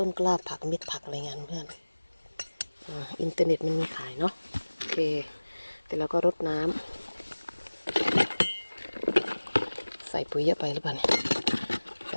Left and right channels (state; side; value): inverted; both; correlation -1.00